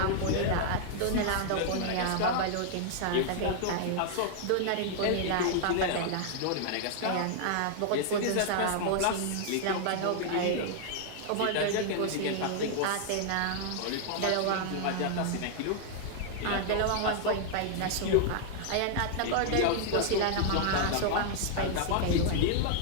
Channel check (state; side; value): different; both; correlation -0.01